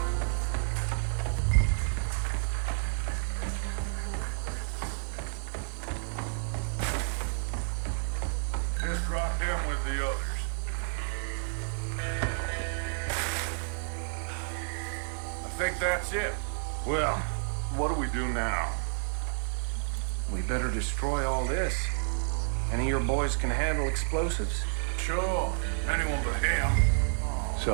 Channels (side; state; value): left; silent; digital silence